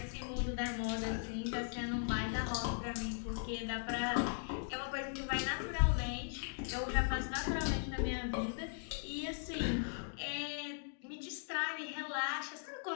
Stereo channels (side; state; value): right; silent; digital silence